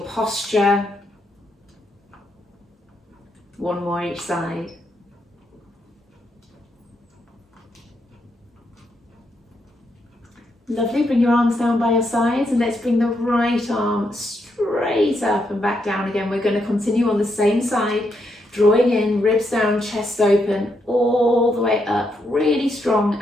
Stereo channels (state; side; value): normal; both; correlation 0.79